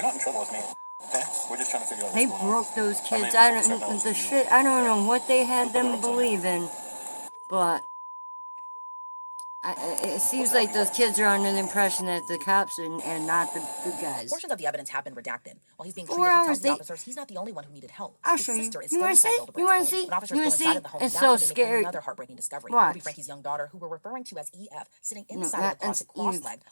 not in trouble with me. Okay? We're just trying to figure out They what's going on. broke those kids. I mean, I don't know what they had them believe in, but it seems like those kids are under the impression that the cops and not the good guys. Portions of the evidence have been redacted. While he's being 4 treated, he hours, tells the officers he's not the only one who needed help. I'll His show you. sister is You still wanna inside see? Hildebrand's You wanna home. see? When officers You wanna go see? inside of the home, It's that's so when they make scary. another heartbreaking discovery. Watch. Ruby, Frankie's young daughter, who we're referring to as EF, sitting No, inside of the that's closet, cross-legged, Eve,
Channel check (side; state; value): both; inverted; correlation -1.00